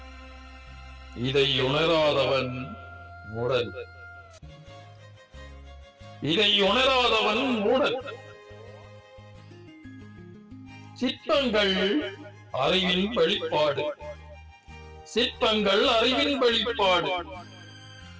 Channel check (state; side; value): identical; both; correlation 1.00